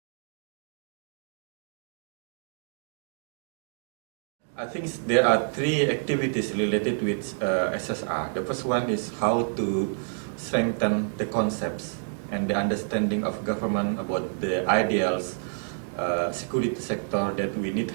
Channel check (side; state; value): left; silent; digital silence